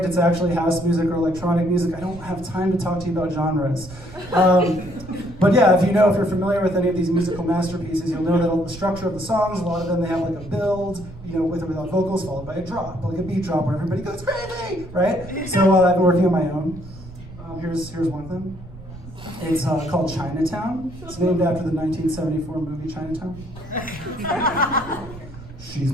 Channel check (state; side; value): noise; right; rumble, 16 dB below the sound